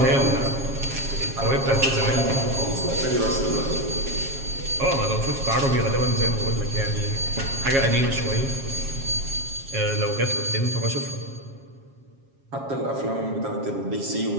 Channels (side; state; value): left; late; 7.4 ms